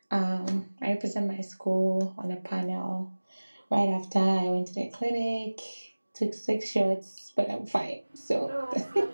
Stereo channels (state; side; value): inverted; both; correlation -1.00